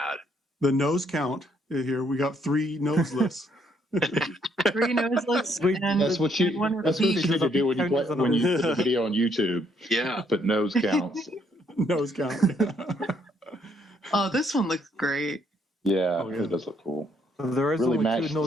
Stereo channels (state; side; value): normal; both; correlation 0.70